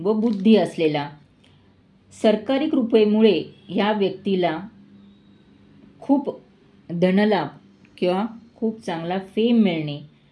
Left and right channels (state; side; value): identical; both; correlation 1.00